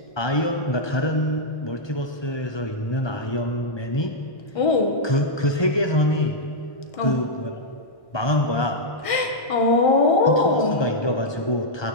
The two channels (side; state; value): right; late; 1.6 ms